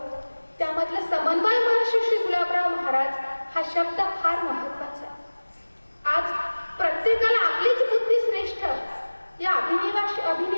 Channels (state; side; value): inverted; both; correlation -1.00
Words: त्यामधलं समन्वय महर्षी श्री गुलाबराव महाराज हा शब्द फार महत्वाचा आहे। आज प्रत्येकाला आपलीच बुद्धी श्रेष्ठ या